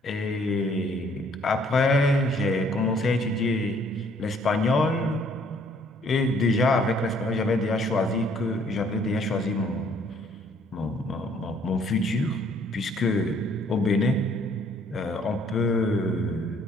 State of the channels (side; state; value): both; normal; correlation 0.62